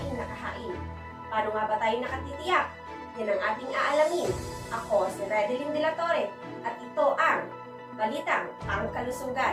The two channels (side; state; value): both; identical; correlation 1.00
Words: na kahain. Paano nga ba tayo nakatitiyak? Yan ang ating aalamin. Ako si Redeline de la Torre at ito ang Balitang